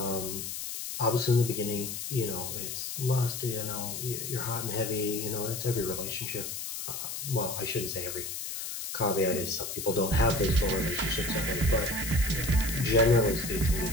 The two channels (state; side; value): noise; left; hiss, 6 dB below the sound